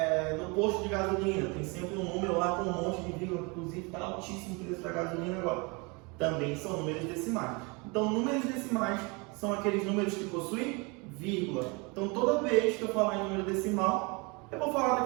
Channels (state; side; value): quieter; left; 29.0 dB